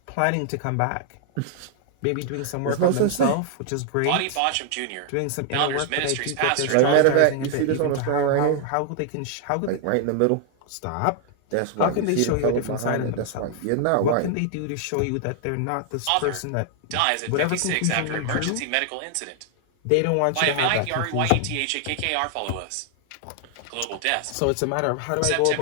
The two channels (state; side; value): different; both; correlation 0.00